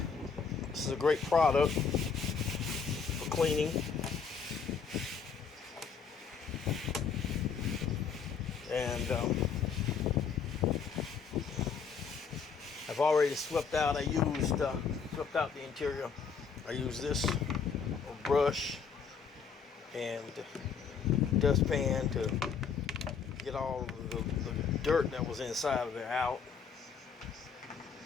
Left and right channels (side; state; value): right; quieter; 6.1 dB